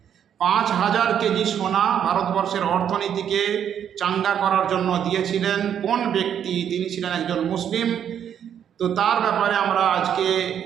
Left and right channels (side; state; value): left; quieter; 9.0 dB